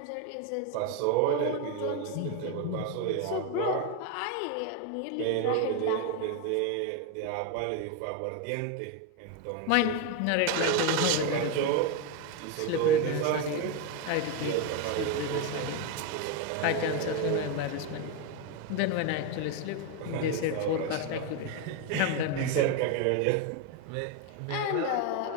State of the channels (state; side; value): different; both; correlation 0.02